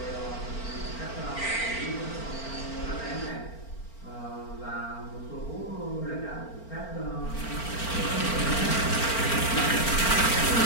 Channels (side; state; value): right; late; 4.4 ms